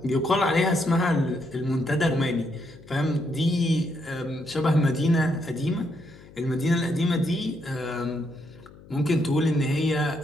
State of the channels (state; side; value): noise; left; hum, 21 dB below the sound